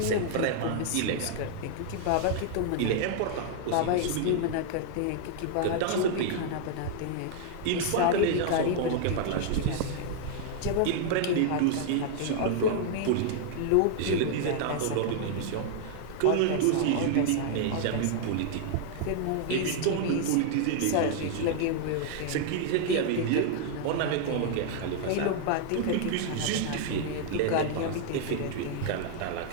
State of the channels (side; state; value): both; different; correlation 0.00